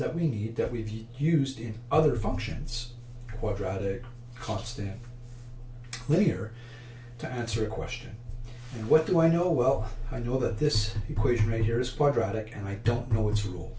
we need, that we've used in other functions, quadratic, constant, linear, to answer a question. And what do I know? Well, I know that this equation right here is quadratic, and I don't know its rule.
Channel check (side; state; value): both; identical; correlation 1.00